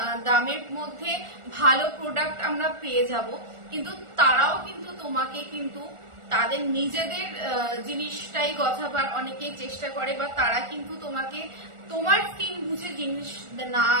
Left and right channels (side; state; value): left; late; 1.4 ms